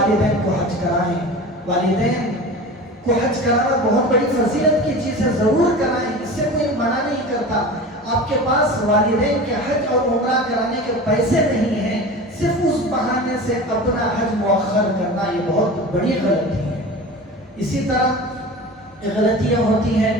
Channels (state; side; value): normal; both; correlation 0.34